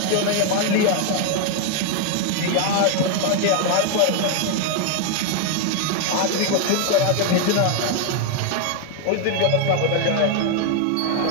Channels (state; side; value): different; both; correlation 0.00